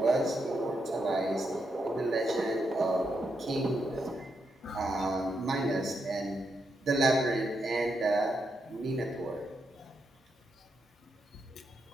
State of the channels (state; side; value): normal; both; correlation 0.82